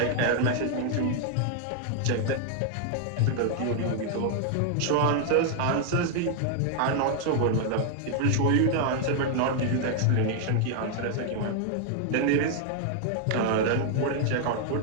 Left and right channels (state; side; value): different; both; correlation 0.00